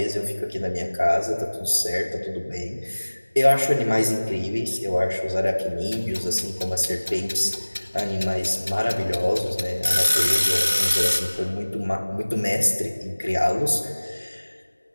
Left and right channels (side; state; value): both; inverted; correlation -1.00